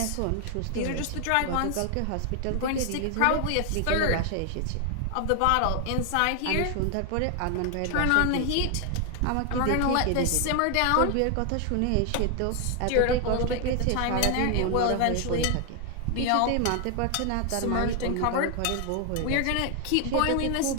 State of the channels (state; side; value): different; both; correlation 0.00